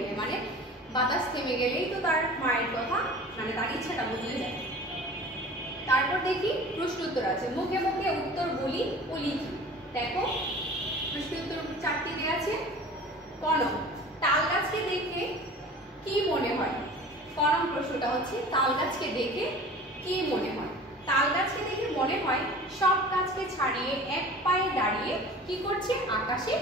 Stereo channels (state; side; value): normal; both; correlation 0.41